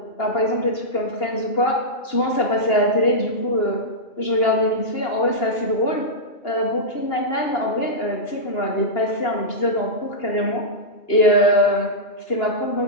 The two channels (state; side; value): late; right; 2.8 ms